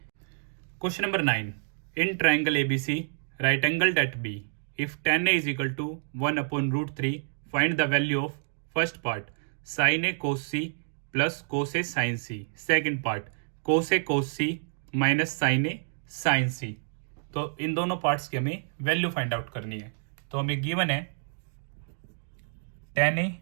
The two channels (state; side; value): silent; left; digital silence